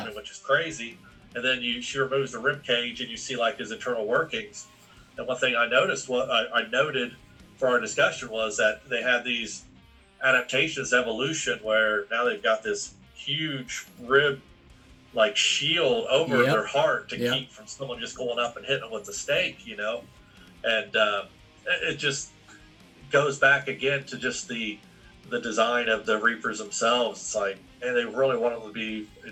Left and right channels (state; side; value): identical; both; correlation 1.00